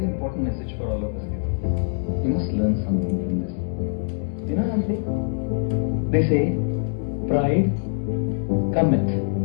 important message for all of us here. We must learn something from this. You know what I'm saying? They say, pride cometh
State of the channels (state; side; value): silent; right; digital silence